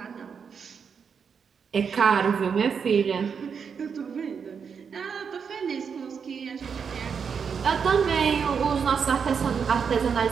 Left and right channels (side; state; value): left; quieter; 6.4 dB